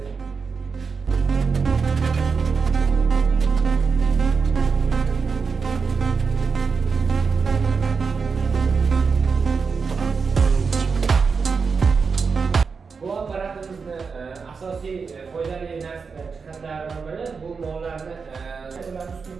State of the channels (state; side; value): quieter; left; 5.2 dB